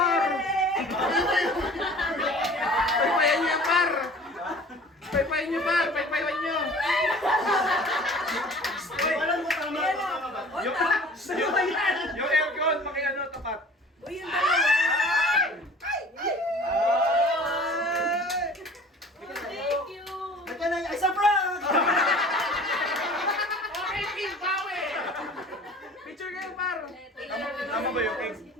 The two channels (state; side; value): normal; both; correlation 0.45